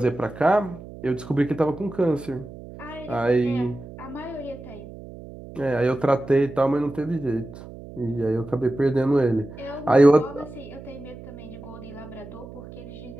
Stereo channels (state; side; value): noise; right; hum, 15 dB below the sound